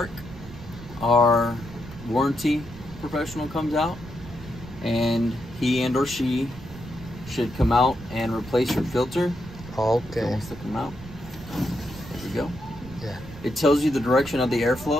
our warranty professional comes out, and he and or she should come out and replace your filter. Okay. It wants to come out. There we go. Yeah. It tells you the direction of the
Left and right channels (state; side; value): noise; right; rumble, 15 dB below the sound